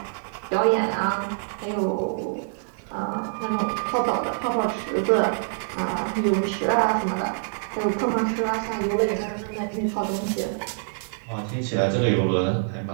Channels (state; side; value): silent; left; 60 dB below the other